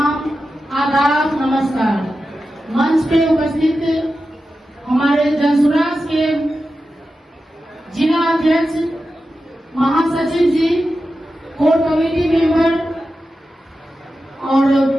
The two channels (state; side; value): normal; both; correlation 0.92